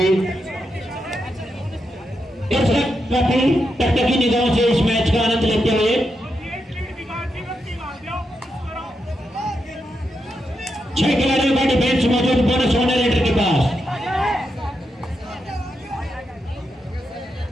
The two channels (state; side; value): normal; both; correlation 0.85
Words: टकटकी निगाहों से इस मैच का आनंद लेते हुए 6 खिलाड़ियों का डिफेंस मौजूद बोनस मॉडरेटर के पास।